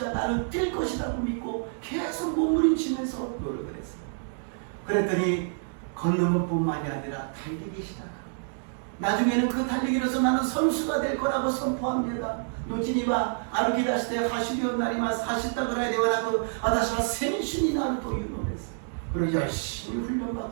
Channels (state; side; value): silent; left; digital silence